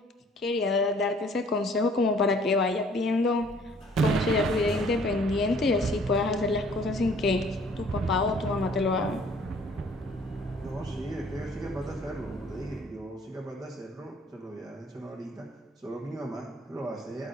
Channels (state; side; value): normal; both; correlation 0.57